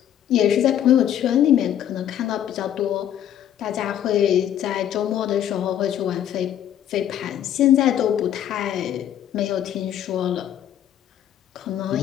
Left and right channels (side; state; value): right; quieter; 10.6 dB